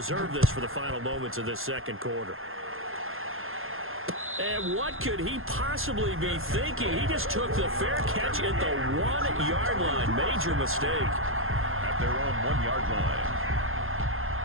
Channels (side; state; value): left; late; 0.60 ms